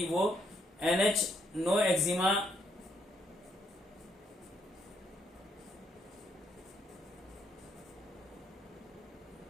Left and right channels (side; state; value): both; normal; correlation 0.73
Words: वो NH नो एक्जिमा